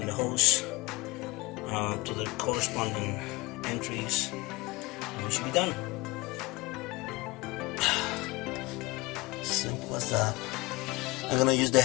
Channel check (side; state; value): right; quieter; 22.7 dB